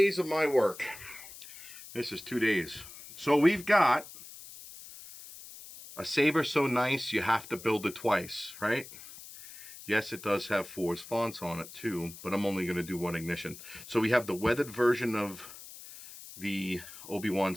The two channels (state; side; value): noise; left; hiss, 16 dB below the sound